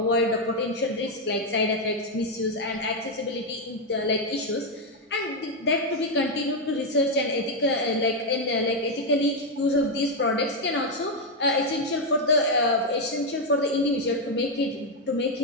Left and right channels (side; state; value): both; normal; correlation 0.03